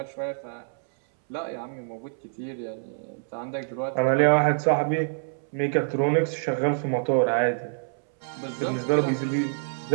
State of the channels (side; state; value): left; silent; 61 dB below the other